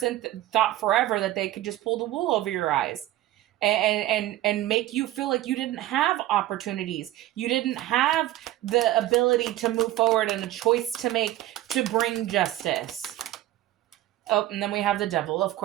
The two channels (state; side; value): quieter; left; 14.7 dB